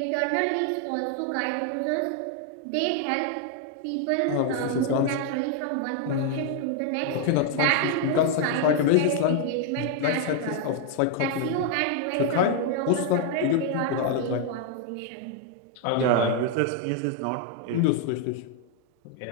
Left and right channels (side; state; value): both; different; correlation 0.00